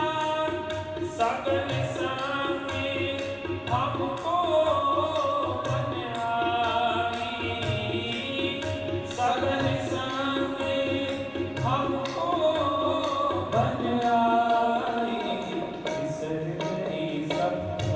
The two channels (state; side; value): identical; both; correlation 1.00